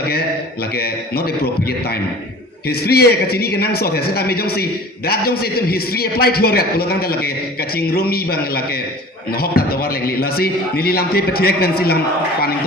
lage not appropriate time. History e ka chini ke nang so the seta me jong si that jong si tum history applied here ya pulo tang lage ka chingrumi bang lage hok ta tawar lengli lasi nili lam te petek pen silam paning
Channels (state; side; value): normal; both; correlation 0.43